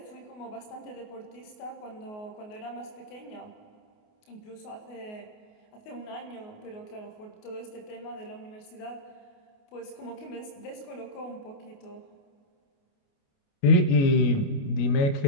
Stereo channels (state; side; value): late; right; 28 ms